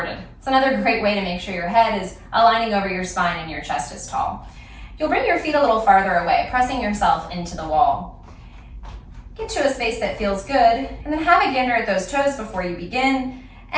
It's another great way to make sure your head is aligning over your spine and your chest is tall. You'll bring your feet a little farther away, pressing yourself into the wall. Get to a space that feels good, and then have a gander at those toes before you begin,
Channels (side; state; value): both; identical; correlation 1.00